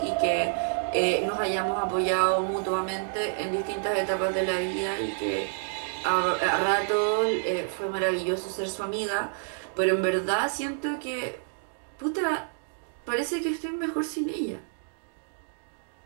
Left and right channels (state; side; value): silent; left; digital silence